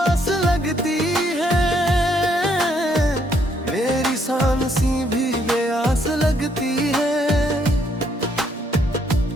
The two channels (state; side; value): normal; both; correlation 0.70